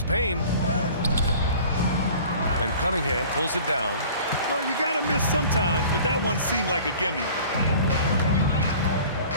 Payne. And Cunningham pulls it down. Well, you got to miss sometimes, but that one seemed like a gimme.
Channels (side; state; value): both; inverted; correlation -0.45